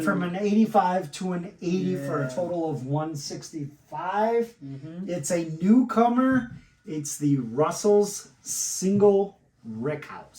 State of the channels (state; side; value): identical; both; correlation 1.00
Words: from an 85 to an 80 for a Yeah. total of 165. Mm-hmm. It's a newcomer. It's the Russell's Single